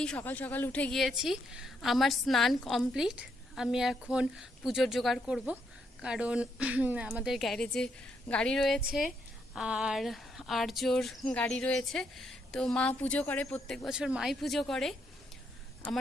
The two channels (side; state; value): both; normal; correlation 0.77